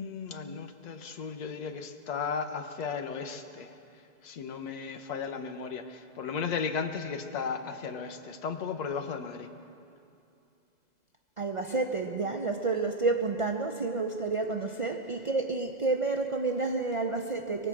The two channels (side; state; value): right; late; 2.0 ms